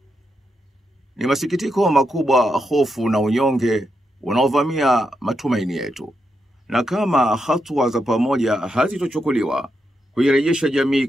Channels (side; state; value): both; normal; correlation 0.83